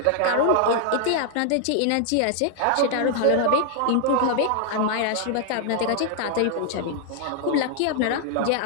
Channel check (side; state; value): both; different; correlation 0.00